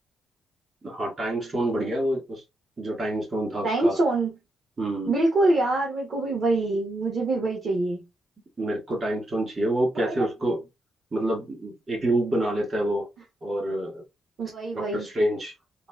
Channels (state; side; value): normal; both; correlation 0.83